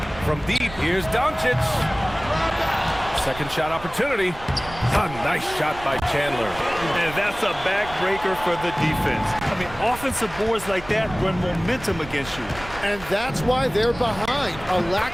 From deep, here's Doncic. Second shot opportunity. A nice shot by Chandler. And that's a backbreaker for the defense. I mean, offensive boards like that run momentum against you. And that's why they're behind. A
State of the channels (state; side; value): noise; right; rumble, 15 dB below the sound